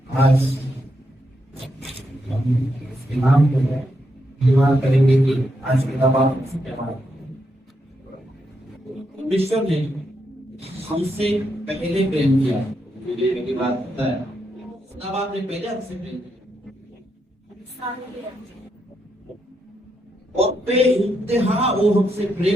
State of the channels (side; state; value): both; normal; correlation 0.81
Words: आज इसके नाम को निर्माण करेंगे कि आज के दबाव से क्या बात। परमेश्वर ने हमसे पहले प्रेम किया, मेरी बात पता है, तब आपने पहले हमसे प्रेम किया और बेइंतहा वो हमसे